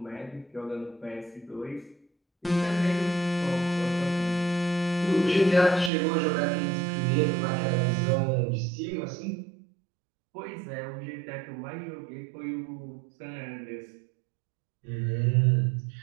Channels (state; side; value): drops out; left; at 5.9 s